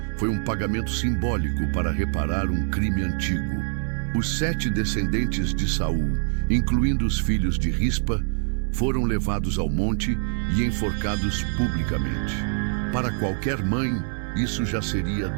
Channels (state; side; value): silent; left; 62 dB below the other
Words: Foi um pagamento simbólico para reparar um crime antigo. Os 7 descendentes de Saul, incluindo os filhos de Rispa, foram levados ao monte e enforcados publicamente. Para qualquer mãe, isso já seria